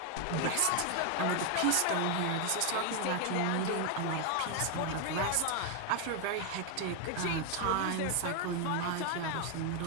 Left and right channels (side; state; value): both; different; correlation 0.01